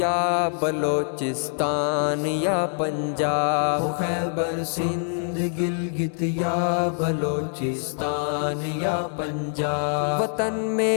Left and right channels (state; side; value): silent; right; 62 dB below the other